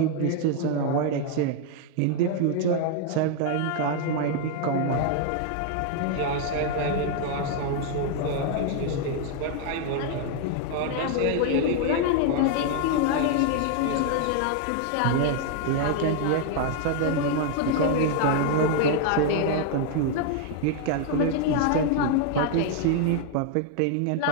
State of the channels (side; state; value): both; different; correlation 0.00